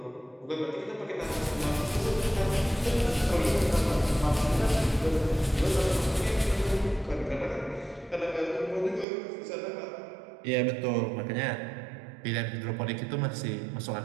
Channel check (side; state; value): left; drops out; at 9.1 s